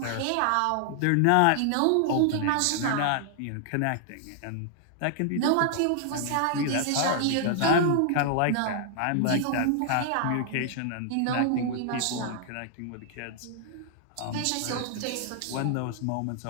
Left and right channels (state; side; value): different; both; correlation 0.00